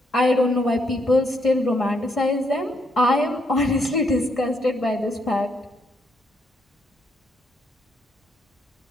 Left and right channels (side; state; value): both; normal; correlation 0.75